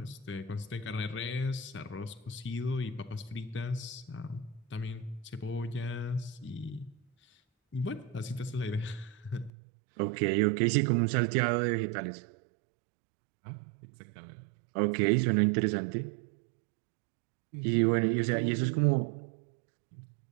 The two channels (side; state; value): left; drops out; at 9.5 s